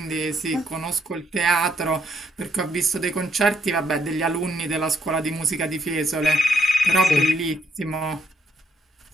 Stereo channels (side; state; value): both; normal; correlation 0.72